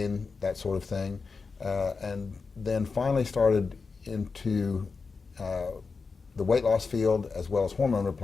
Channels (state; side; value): quieter; right; 4.7 dB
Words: that sort of thing. And then finally started into the weight loss field as well as hormone